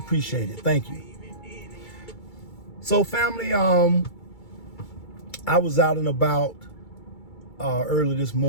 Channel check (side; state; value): right; late; 2.3 ms